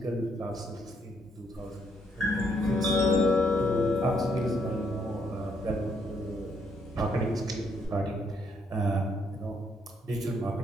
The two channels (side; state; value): both; normal; correlation 0.72